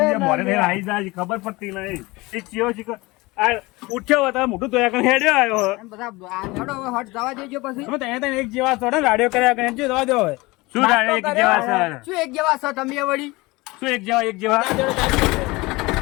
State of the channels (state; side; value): quieter; right; 22.5 dB